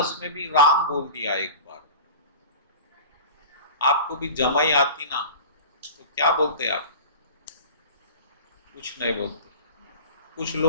में भी राम बोल दिया एक बार। आपको भी जमाई आती ना, तो क्या बोलते आप? कुछ नहीं बोलते। कुछ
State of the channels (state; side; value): inverted; both; correlation -0.36